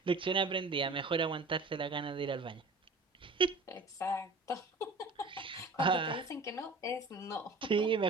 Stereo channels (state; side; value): quieter; left; 3.4 dB